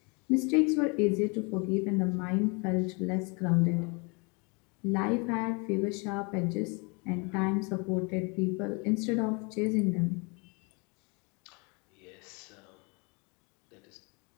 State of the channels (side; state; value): right; quieter; 31.5 dB